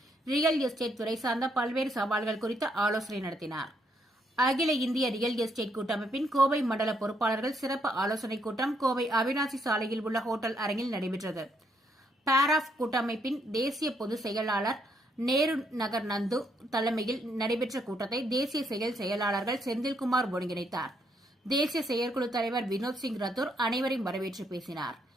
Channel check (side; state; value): both; normal; correlation 0.74